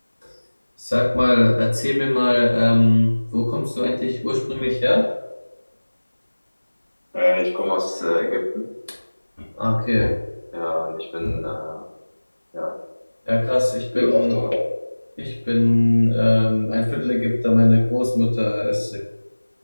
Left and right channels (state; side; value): inverted; both; correlation -1.00